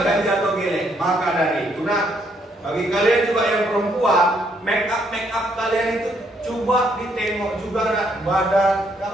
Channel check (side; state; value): both; normal; correlation 0.71